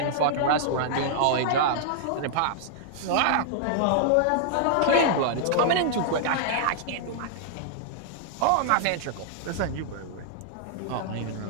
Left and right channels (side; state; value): both; different; correlation -0.01